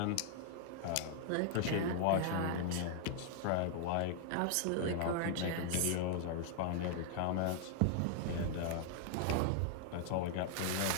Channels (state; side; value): different; both; correlation -0.01